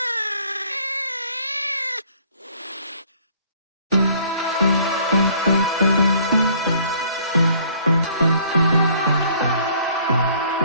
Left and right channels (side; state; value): both; inverted; correlation -0.58